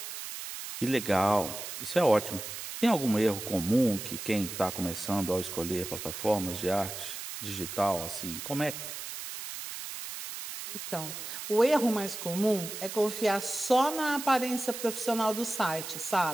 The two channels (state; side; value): noise; right; hiss, 8 dB below the sound